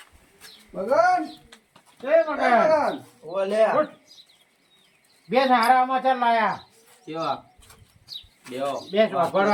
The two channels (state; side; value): identical; both; correlation 1.00